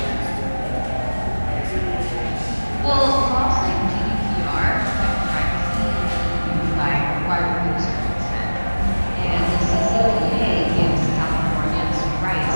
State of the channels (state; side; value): inverted; both; correlation -1.00